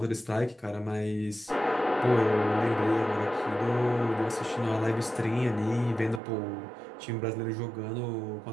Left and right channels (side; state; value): left; drops out; at 6.2 s